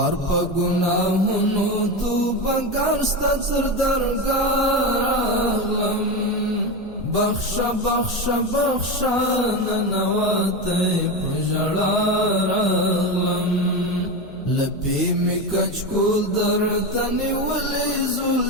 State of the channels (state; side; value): noise; left; hum, 24 dB below the sound